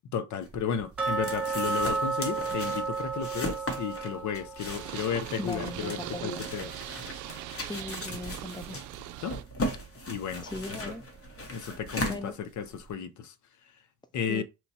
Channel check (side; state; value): both; normal; correlation 0.28